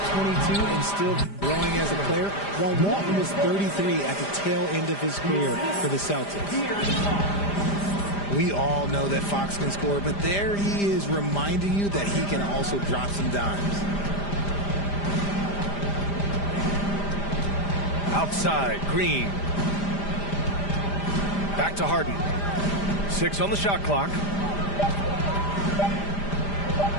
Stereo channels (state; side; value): late; right; 5.0 ms